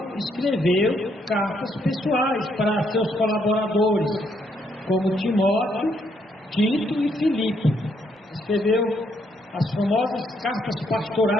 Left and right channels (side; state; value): both; normal; correlation 0.73